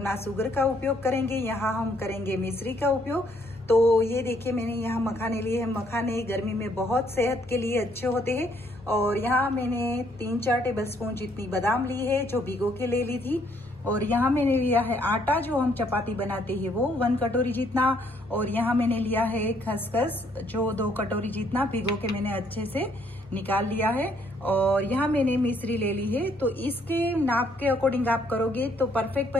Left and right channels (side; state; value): both; normal; correlation 0.68